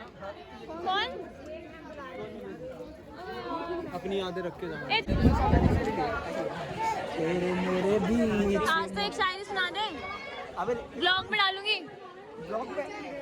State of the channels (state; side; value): identical; both; correlation 1.00